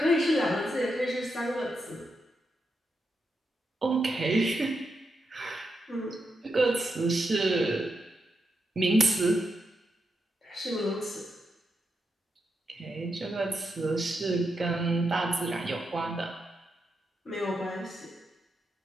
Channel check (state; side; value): normal; both; correlation 0.85